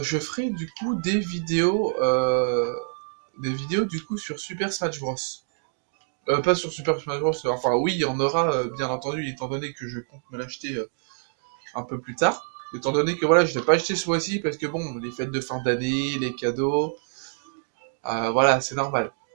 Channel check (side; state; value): left; silent; digital silence